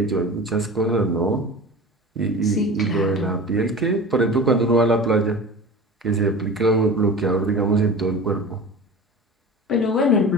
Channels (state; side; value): normal; both; correlation 0.35